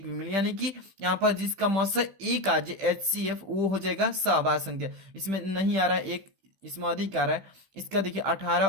भी मिल, यानी कि यहाँ पर जिसका मौसा एक आ जाए HCF वो हो जाएगा सहअभाज्य संख्या। इसमें नहीं आ रहा है एक, इसमें अधिक आ रहा है। इसका देखिए 18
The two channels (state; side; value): late; left; 15 ms